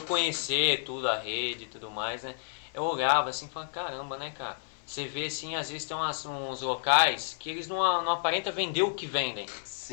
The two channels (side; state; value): right; silent; 57 dB below the other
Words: conhecer tudo, a rede e tudo mais, né? Eu olhava assim e falava, caramba, né, cara? Você vê, assim, às vezes tem uns locais que eles não aparentam vender o que vendem.